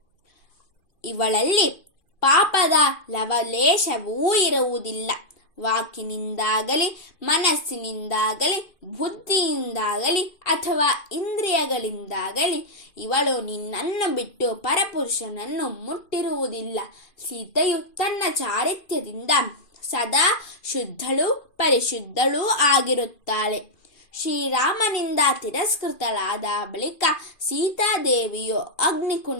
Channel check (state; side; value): late; right; 2.5 ms